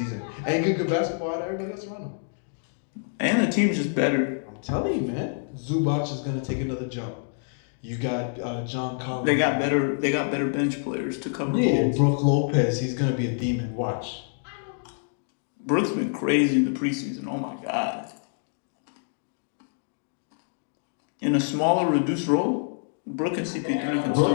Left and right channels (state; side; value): silent; right; digital silence